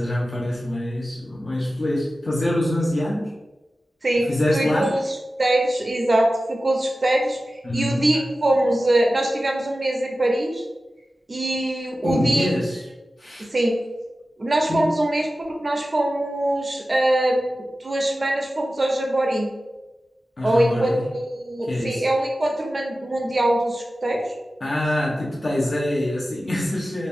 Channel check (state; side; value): normal; both; correlation 0.94